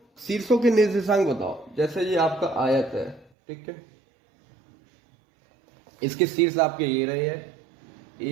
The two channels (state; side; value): drops out; left; at 3.3 s